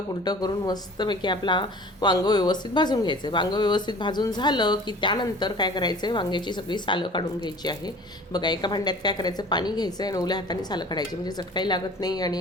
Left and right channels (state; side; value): normal; both; correlation 0.45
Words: पुलटं करून मस्तपैकी आपला वांगं व्यवस्थित भाजून घ्यायचं आहे. वांगं व्यवस्थित भाजून झालं की त्यानंतर काय करायचं आहे, वांग्याची सगळी सालं काढून घ्यायची आहे. बघा, एका भांड्यात काय करायचं, पाणी घ्यायचं आहे आणि ओल्या हाताने सालं काढायची, म्हणजे चटकाही लागत नाही